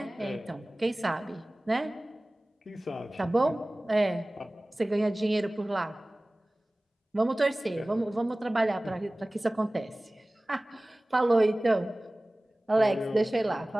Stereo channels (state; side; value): normal; both; correlation 0.98